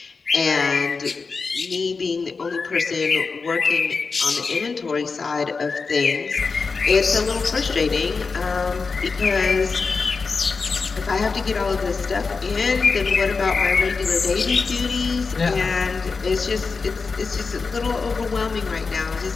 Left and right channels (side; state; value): right; quieter; 4.6 dB